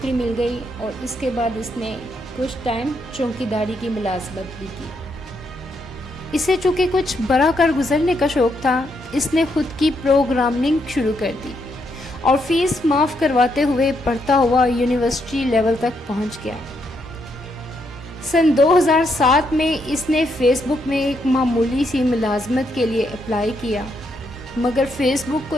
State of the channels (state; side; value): normal; both; correlation 0.77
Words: मिल गई और इसके बाद इसने कुछ टाइम चौकीदारी की मुलाजमत भी की। इसे चूँकि कुछ बड़ा कर गुजरने का शौक़ था, इसने खुद की प्रोग्रामिंग शुरू कर दी और फीस माफ़ करवाते हुए पढ़ता हुआ यूनिवर्सिटी लेवल तक पहुंच गया। सन 2007 में इसने फेसबुक में एक मामूली सी मुलाजमत के लिए अप्लाई किया, मगर फेसबुक को